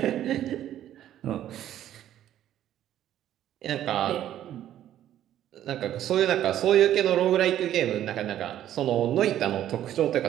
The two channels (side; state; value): left; quieter; 11.8 dB